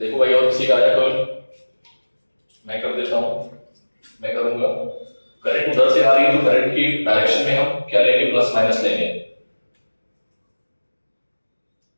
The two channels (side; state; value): both; inverted; correlation -1.00